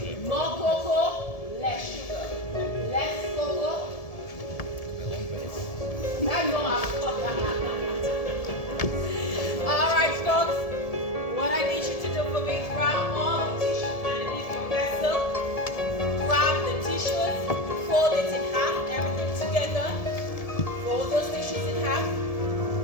it? More cocoa, less sugar. Less cocoa. I know All right, folks. What I need you to do for me, grab all the tissues underneath your vessel. Grab the tissues, fold it in half, everything together. Fold those tissues in half.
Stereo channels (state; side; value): late; right; 1.7 ms